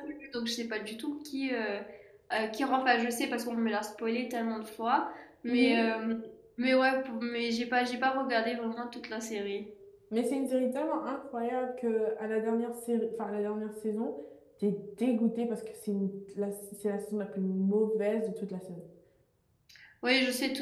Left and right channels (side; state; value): both; identical; correlation 1.00